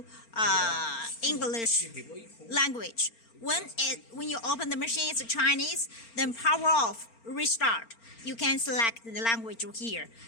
English language. When you open the machine, it's Chinese, then power off, restart. You can select the language here.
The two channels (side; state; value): right; late; 4.4 ms